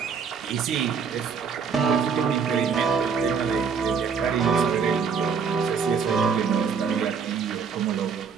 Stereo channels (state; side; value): quieter; left; 6.1 dB